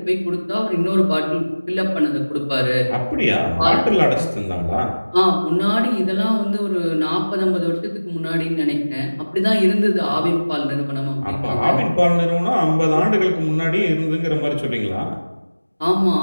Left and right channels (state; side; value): inverted; both; correlation -1.00